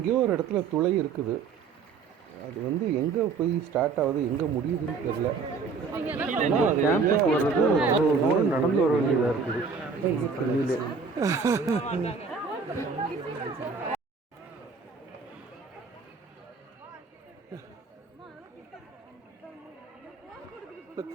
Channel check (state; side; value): quieter; left; 5.1 dB